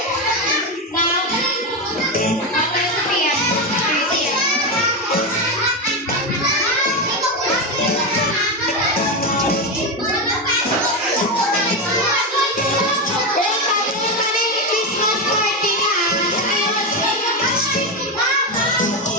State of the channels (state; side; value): normal; both; correlation 0.12